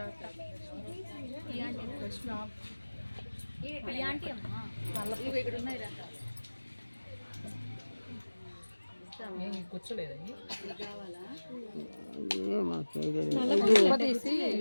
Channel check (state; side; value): inverted; both; correlation -1.00